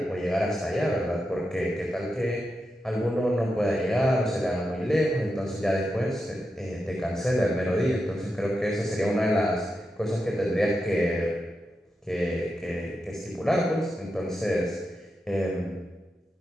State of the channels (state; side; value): normal; both; correlation 0.88